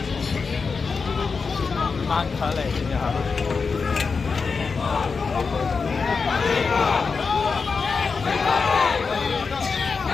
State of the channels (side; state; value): right; quieter; 5.0 dB